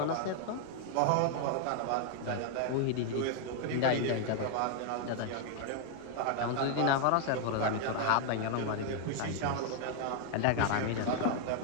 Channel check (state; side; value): different; both; correlation 0.00